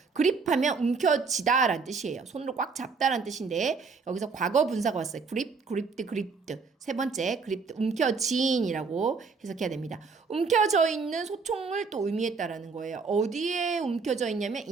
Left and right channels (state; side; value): quieter; left; 4.8 dB